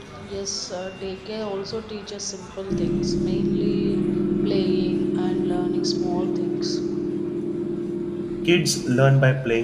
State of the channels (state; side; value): identical; both; correlation 1.00